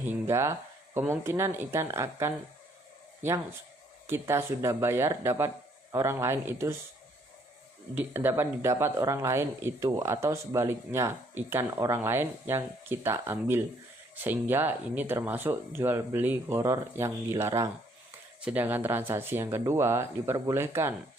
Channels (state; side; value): normal; both; correlation 0.66